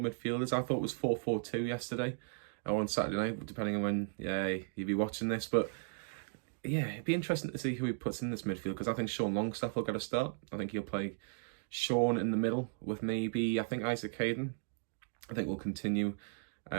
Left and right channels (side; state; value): left; silent; digital silence